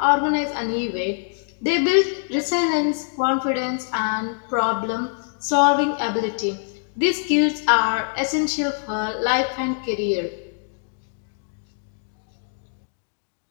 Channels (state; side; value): silent; right; digital silence